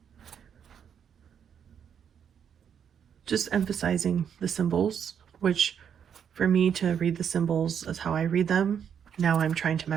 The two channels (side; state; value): left; quieter; 8.0 dB